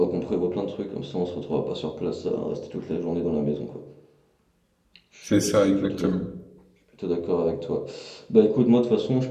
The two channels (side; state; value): both; identical; correlation 1.00